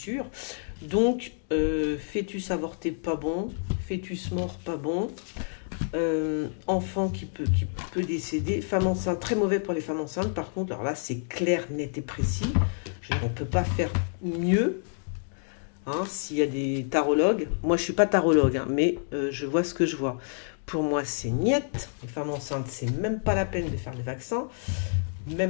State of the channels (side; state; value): right; silent; digital silence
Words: Donc, fœtus avorté, pas bon. Fœtus mort, pas bon. Enfant qui peut décéder. Femme enceinte, très mauvais pour les femmes enceintes. Par contre, alors là, c'est clair, net et précis. On ne peut pas faire mieux. Hein, s'il y a des tarologues, moi je suis pas tarologue, hein, mais je vois ce que je vois. Pour moi c'est niette, les femmes enceintes c'est même pas la peine de faire le vaccin,